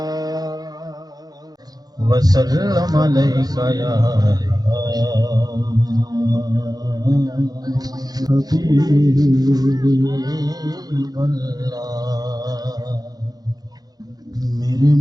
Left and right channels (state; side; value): late; left; 0.19 ms